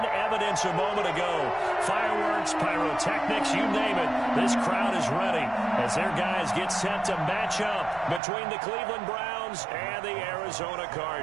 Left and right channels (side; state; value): left; drops out; at 8.2 s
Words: evidence a moment ago. Fireworks, pyrotechnics, you name it. This crowd is ready as their guys get set to match up between the Cleveland Browns and the Arizona